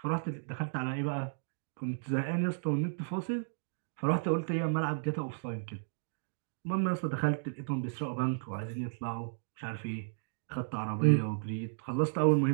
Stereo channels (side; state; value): left; silent; digital silence